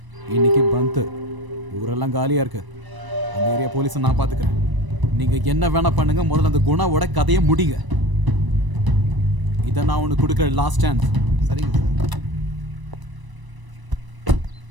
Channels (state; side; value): late; left; 1.0 ms